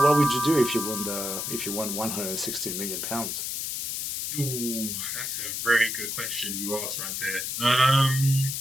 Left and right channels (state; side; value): noise; left; hiss, 3 dB below the sound